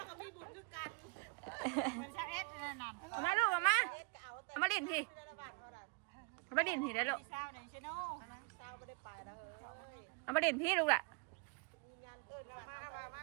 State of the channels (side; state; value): left; quieter; 30.8 dB